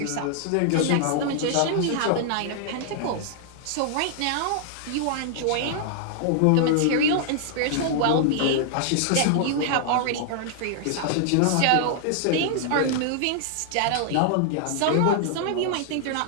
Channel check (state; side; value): different; both; correlation -0.01